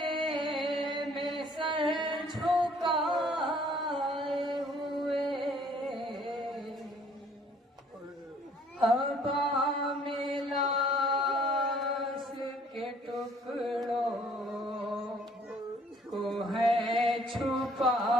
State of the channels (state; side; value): normal; both; correlation 0.59